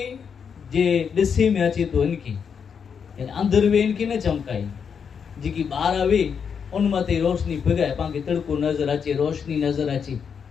जे ॾिसे में अचे तो इनकी, यानी अंदर वे इनकी न चमकाए, जेकी ॿाहिरि वे उन मथे रोशनी पिघाए पाण खे तड़को नज़र अचे, रोशनी नज़र अचे,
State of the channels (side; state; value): right; quieter; 6.8 dB